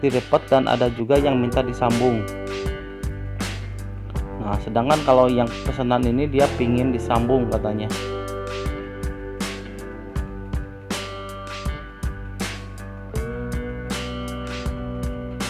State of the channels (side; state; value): both; identical; correlation 1.00